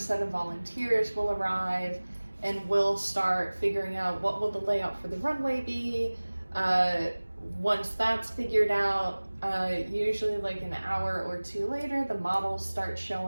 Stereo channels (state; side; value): inverted; both; correlation -1.00